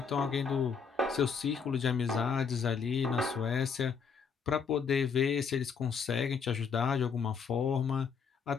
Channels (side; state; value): right; quieter; 6.0 dB